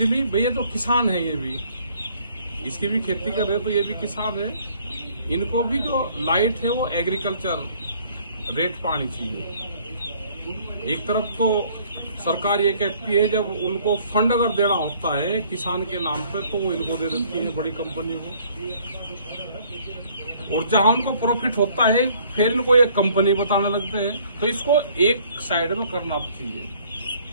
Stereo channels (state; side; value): inverted; both; correlation -0.59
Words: भैया तो किसान है, ये भी इसकी भी खेती कर रहे, तो ये भी किसान है, इनको भी जो लाइट है वो एग्रीकल्चर रेट पानी चाहिए। एक तरफ तो सरकार ये कहती है जब उनको फंड अगर देना होता है किसान के नाम पे तो वो इनको दे देती है बड़ी कंपनियों को, और जहां उनको प्रॉफिट होता है फिर इनको एक कंपनी बताने लगते हैं। तो इसको एक साइड में करना चाहिए,